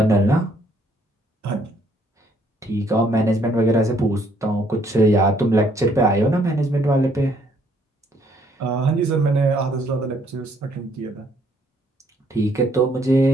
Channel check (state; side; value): normal; both; correlation 0.66